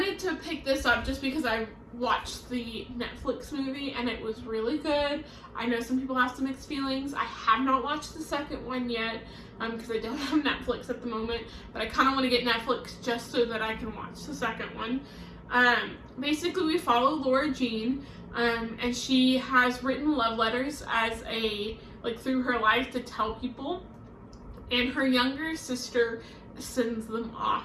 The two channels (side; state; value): both; identical; correlation 1.00